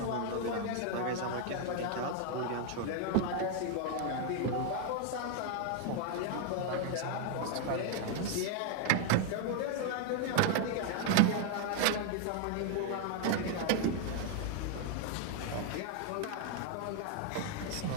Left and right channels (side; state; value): both; different; correlation 0.00